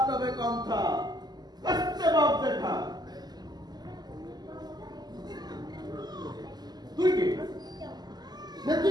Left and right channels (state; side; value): late; left; 0.20 ms